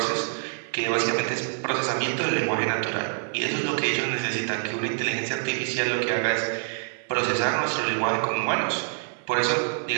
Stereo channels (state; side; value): silent; left; digital silence